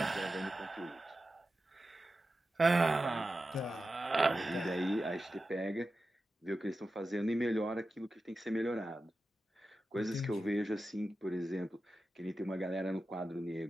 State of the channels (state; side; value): normal; both; correlation 0.92